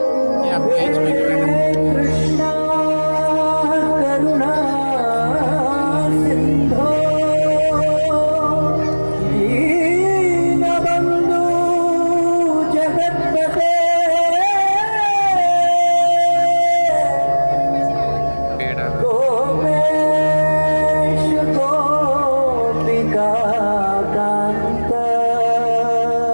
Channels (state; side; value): inverted; both; correlation -1.00